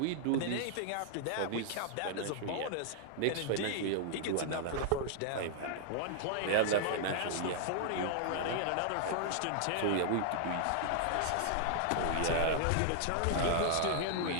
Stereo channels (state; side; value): different; both; correlation -0.01